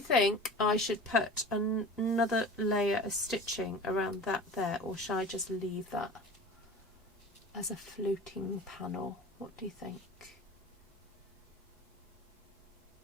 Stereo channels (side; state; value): both; normal; correlation 0.38